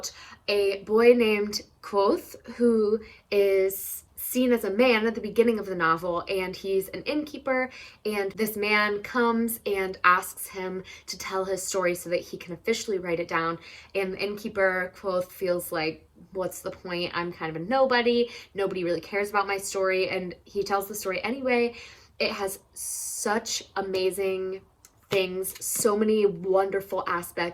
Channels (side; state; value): both; identical; correlation 1.00